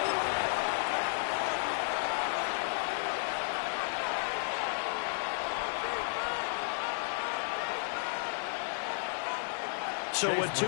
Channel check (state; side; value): silent; right; digital silence